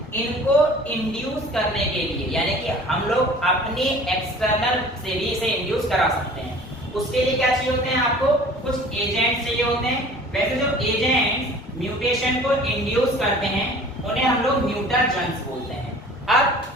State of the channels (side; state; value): both; normal; correlation 0.46